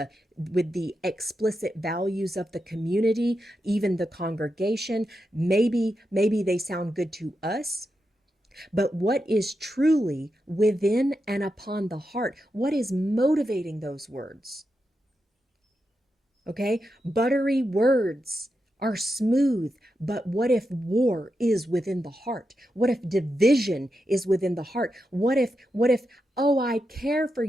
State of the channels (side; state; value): both; normal; correlation 0.87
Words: explicit values of the community, even the congregation. Maybe they sound good to us. But what is truly within and upon the heart? What is motivating those words? Okay? Buttery words are smooth, but what if war is within the heart? What if division is within the heart? What if oh, I care for